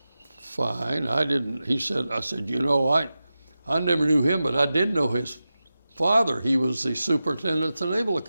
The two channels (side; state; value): both; inverted; correlation -0.93